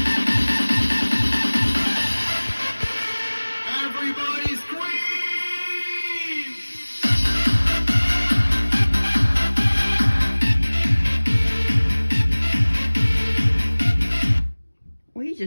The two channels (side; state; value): both; inverted; correlation -1.00